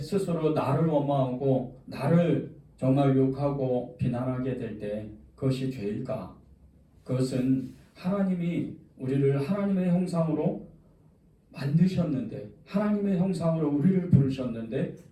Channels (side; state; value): both; identical; correlation 1.00